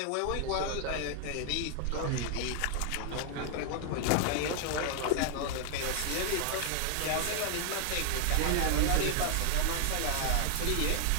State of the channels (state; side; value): different; both; correlation 0.00